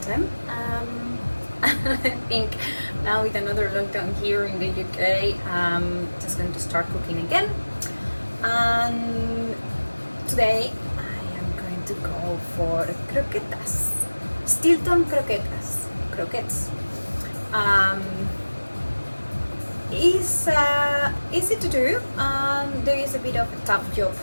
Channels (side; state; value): both; inverted; correlation -1.00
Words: time. I think now with another lockdown here in the UK, I'm just going to start cooking again. And today I am going to go for croquetas, Stilton croquetas, croquettes. It's easy to do. There is a bit of a tough job